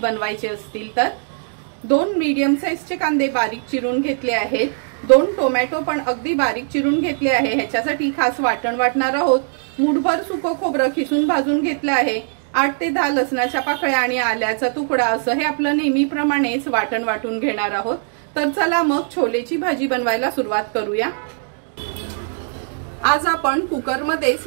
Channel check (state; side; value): silent; left; digital silence